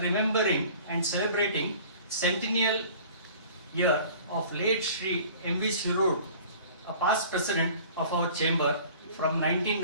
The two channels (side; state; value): both; inverted; correlation -0.47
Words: and celebrating Centennial year of late Shri M.V. Sirur, a past president of our chamber from